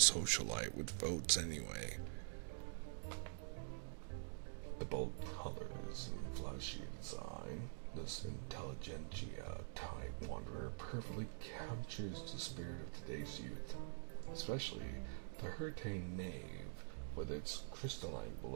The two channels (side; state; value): left; silent; digital silence